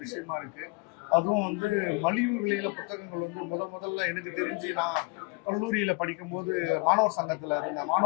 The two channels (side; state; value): right; quieter; 28.4 dB